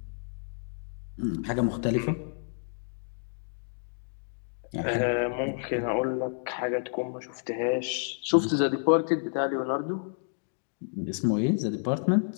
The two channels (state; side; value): silent; right; digital silence